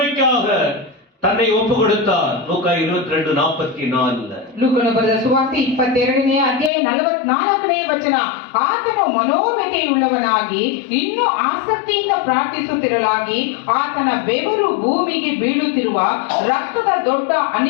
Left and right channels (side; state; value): right; drops out; at 6.7 s